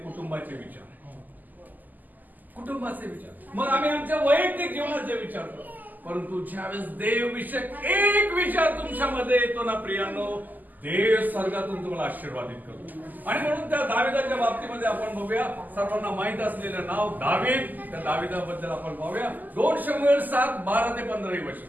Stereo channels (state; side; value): late; left; 0.084 ms